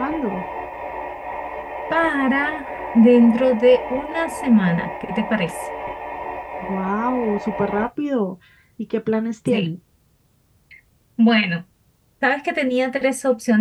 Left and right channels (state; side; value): identical; both; correlation 1.00